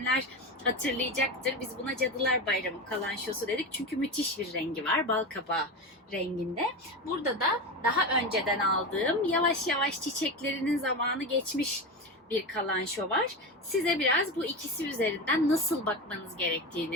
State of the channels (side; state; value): both; normal; correlation 0.21